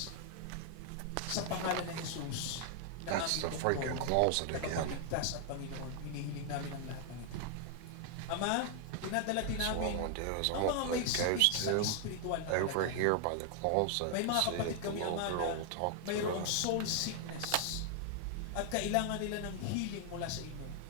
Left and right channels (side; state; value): both; different; correlation 0.00